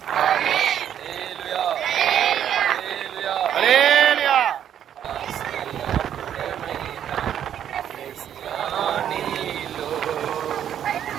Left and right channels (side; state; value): left; quieter; 9.8 dB